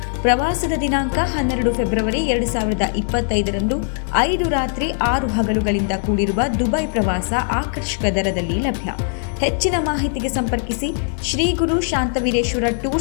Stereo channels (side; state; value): right; silent; 56 dB below the other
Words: ಪ್ರವಾಸದ ದಿನಾಂಕ 12 ಫೆಬ್ರವರಿ 2025ರಂದು 5 ರಾತ್ರಿ 6 ಹಗಲುಗಳಿಂದ ಕೂಡಿರುವ ದುಬೈ ಪ್ರವಾಸ ಆಕರ್ಷಕ ದರದಲ್ಲಿ ಲಭ್ಯ. ಹೆಚ್ಚಿನ ಮಾಹಿತಿಗೆ ಸಂಪರ್ಕಿಸಿ ಶ್ರೀ ಗುರು ಶಾಂತವೀರೇಶ್ವರ